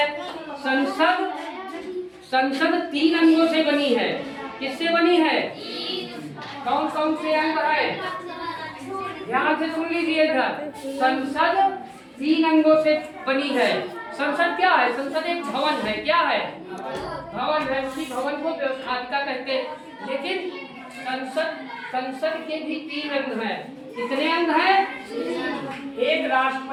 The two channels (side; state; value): both; identical; correlation 1.00